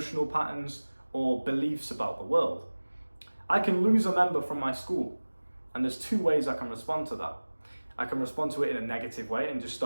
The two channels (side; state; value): both; inverted; correlation -1.00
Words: patterns, or beliefs about the world. I can lose a member from my school, and there's 2 ways I can respond to that. I can respond to it in a negative way and just